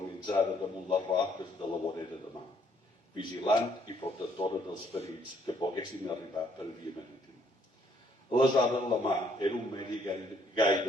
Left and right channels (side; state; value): both; normal; correlation 0.67